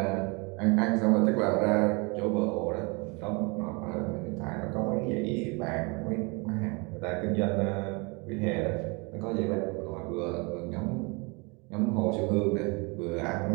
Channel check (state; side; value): quieter; left; 29.6 dB